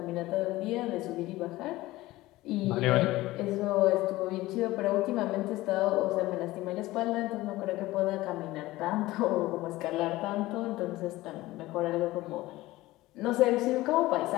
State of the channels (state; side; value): quieter; right; 18.0 dB